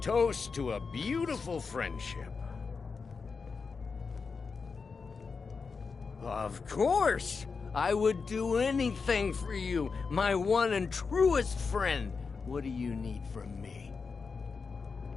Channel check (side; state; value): right; quieter; 5.0 dB